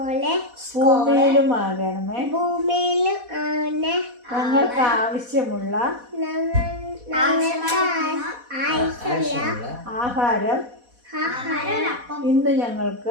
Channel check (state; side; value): late; left; 4.1 ms